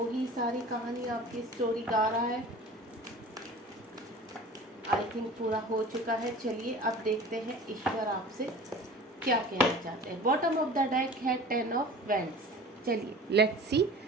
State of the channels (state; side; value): normal; both; correlation 0.40